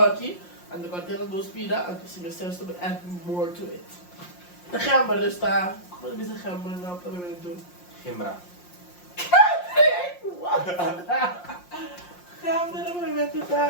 En de container 2 pida. En dus je zelfs to add more to it. De gember dus daar. Wat is de gember nou dat we doen? Gimbra. What? Gember, dat we met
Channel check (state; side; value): late; right; 5.6 ms